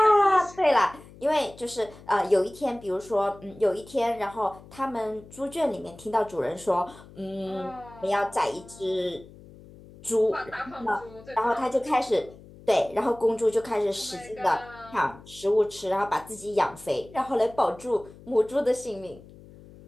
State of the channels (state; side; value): noise; left; hum, 20 dB below the sound